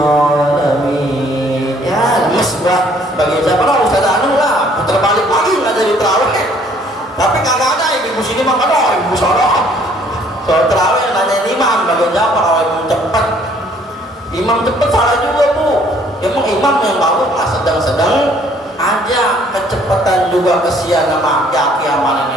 Ya, mesbah bagi siapa lah Ustaz Anu lah, putar balik lagi nggak jadi terawih. Tapi kagak ada ibu sini mah kan, ibu sono. Soal terawih nanya imam bagi siapa kalau imam cepet salah juga bu. Emang imam yang bagus lah sedang-sedang aja, kecepatan juga kesian sama aki-aki sama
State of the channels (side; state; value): both; normal; correlation 0.61